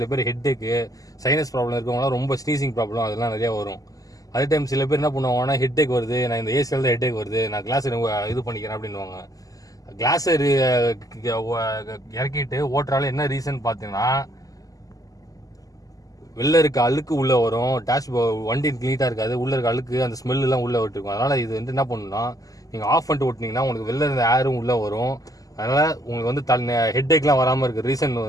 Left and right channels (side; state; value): right; late; 0.17 ms